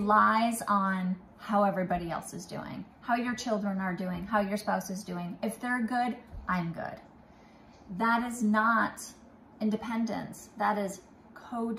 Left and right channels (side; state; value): both; identical; correlation 1.00